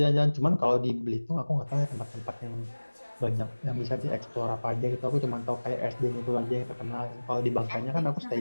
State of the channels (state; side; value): inverted; both; correlation -1.00